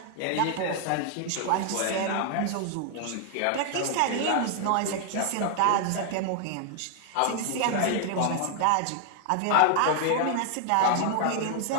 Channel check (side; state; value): both; different; correlation 0.00